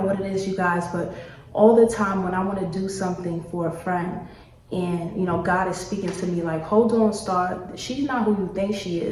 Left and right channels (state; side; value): identical; both; correlation 1.00